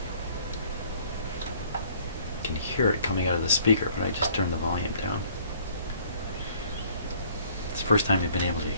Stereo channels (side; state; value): both; inverted; correlation -0.58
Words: You can hear it coming out of the speaker, but I just turned the volume down. It's the first time you've been able to